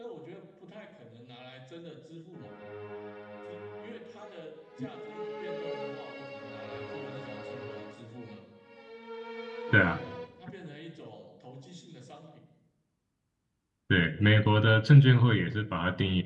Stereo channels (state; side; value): identical; both; correlation 1.00